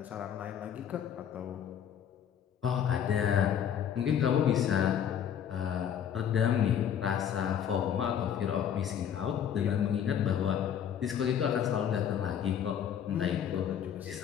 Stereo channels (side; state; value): right; quieter; 9.0 dB